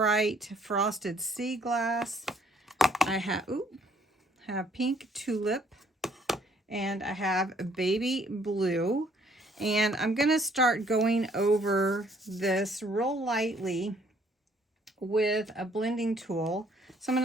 Frosted Sea Glass. I have Pink Tulip, and I have Baby Blue. And I'm going to start going over this real lightly with a blending tool. So I'm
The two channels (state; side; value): normal; both; correlation 0.63